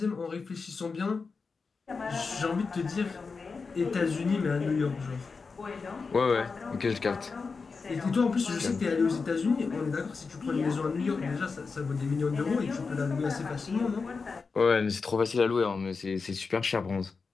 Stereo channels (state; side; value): quieter; right; 4.7 dB